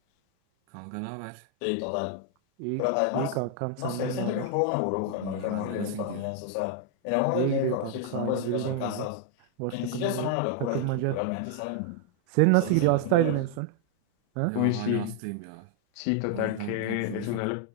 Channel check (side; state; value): both; different; correlation 0.00